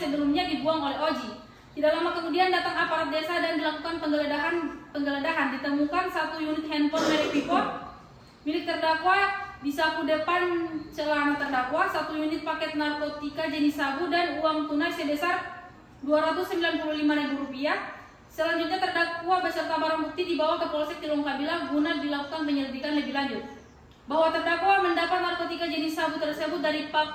dibuang oleh Oji. Tidak lama kemudian datang aparat desa dan dilakukan penggeledahan. Ditemukan 1 unit handphone merek Vivo milik terdakwa di saku depan celana terdakwa, 1 unit paket narkotika jenis sabu dan uang tunai sebesar Rp295.000. Selanjutnya terdakwa beserta barang bukti dibawa ke Polsek Tilongkabila guna dilakukan penyelidikan lebih lanjut. Bahwa terdakwa mendapat narkotika jenis sabu tersebut dari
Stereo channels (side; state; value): both; identical; correlation 1.00